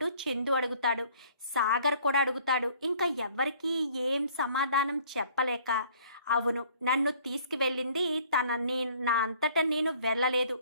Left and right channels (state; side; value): inverted; both; correlation -0.56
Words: చందు అడుగుతాడు. సాగర్ కూడా అడుగుతాడు. ఇంకా ఎవరికి ఏం సమాధానం చెప్పలేక, అవును, నన్ను తీసుకువెళ్ళింది నా అంతటా నేను వెళ్ళలేదు,